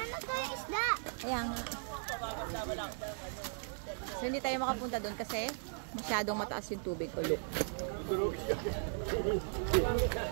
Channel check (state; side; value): silent; left; 53 dB below the other